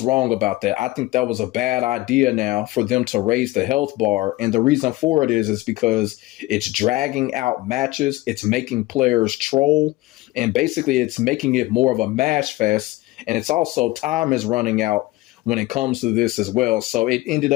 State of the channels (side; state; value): right; quieter; 18.9 dB